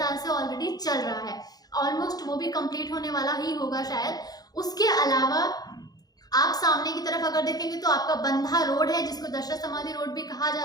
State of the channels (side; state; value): right; late; 0.19 ms